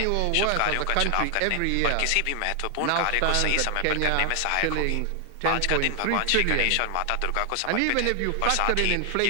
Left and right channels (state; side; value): different; both; correlation 0.00